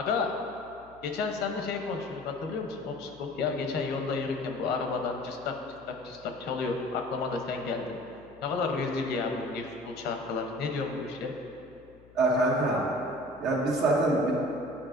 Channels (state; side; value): noise; left; hum, 25 dB below the sound